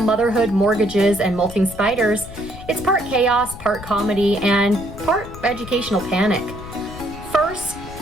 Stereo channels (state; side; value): noise; left; rumble, 14 dB below the sound